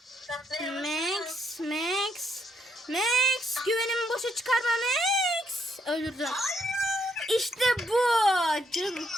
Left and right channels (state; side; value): normal; both; correlation 0.74